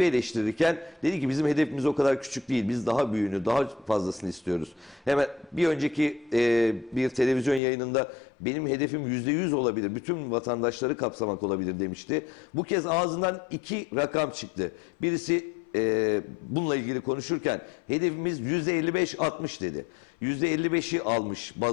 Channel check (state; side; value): drops out; right; at 7.6 s